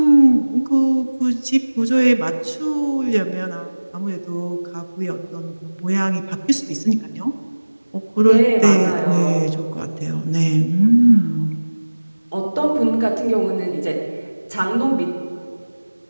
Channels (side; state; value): both; inverted; correlation -1.00